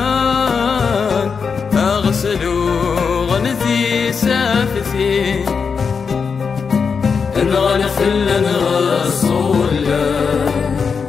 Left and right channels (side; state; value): right; quieter; 5.7 dB